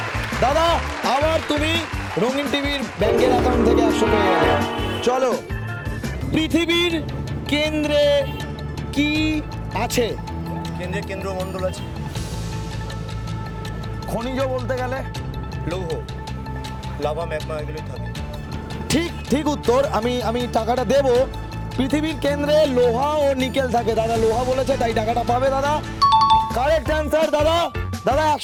দাদা, আবার তুমি রঙিন টিভির ব্যাংকের অ্যাকাউন্ট থেকে 100 পেয়ে গেলে। চলো, পৃথিবীর কেন্দ্রে কি আছে? কেন্দ্রে কেন্দ্রমণ্ডল আছে। খনিজ বলতে গেলে লৌহ, লাভা, ম্যাগমা এগুলোই থাকে। ঠিক উত্তর। আমি টাকাটা দেব। পৃথিবীর কেন্দ্রে লোহা ও নিকেল থাকে। দাদা লোহা বলেছে, তাই টাকাটা পাবে দাদা। কারেক্ট অ্যান্সার দাদা। দাদা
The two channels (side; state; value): both; identical; correlation 1.00